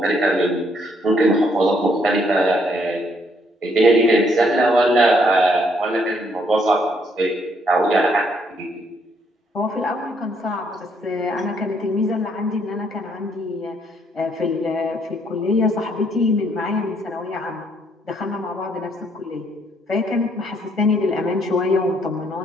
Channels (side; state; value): both; normal; correlation 0.69